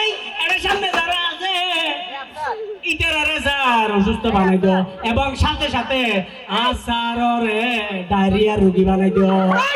এর সামনে যারা আছে ইটারে স্যার অসুস্থ বানাই দিও এবং সাথে সাথে আসারে ডায়রিয়া রোগী বানাই দিও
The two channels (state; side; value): identical; both; correlation 1.00